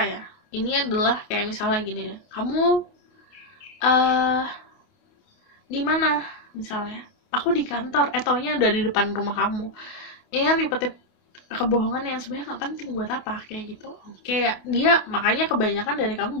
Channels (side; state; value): right; late; 28 ms